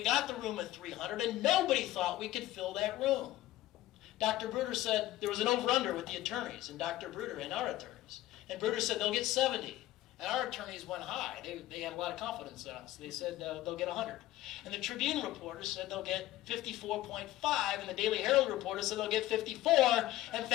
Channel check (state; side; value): quieter; right; 15.3 dB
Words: got the room at 300, and nobody thought we could fill that room. Dr. Bruder said there was an over-under with the attorneys, and Dr. Bruder and our attorneys. And Bruder said they'll get 70. And our attorneys went high. They had a lot of confidence in us. They said they'll get 100. And the Tribune reporters said they'll get 54.5, and the Daily Herald reporters said they'll get 54. And